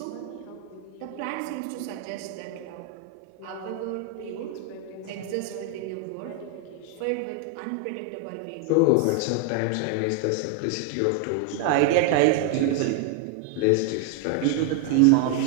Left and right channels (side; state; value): both; different; correlation 0.00